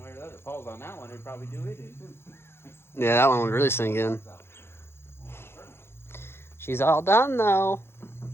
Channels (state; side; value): late; right; 0.12 ms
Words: way or the other. If it falls on that one, it'd probably do it in too. Yeah, that one would really sink in. She's all done though.